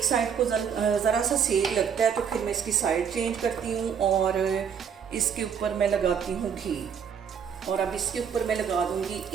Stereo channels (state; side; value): quieter; left; 7.4 dB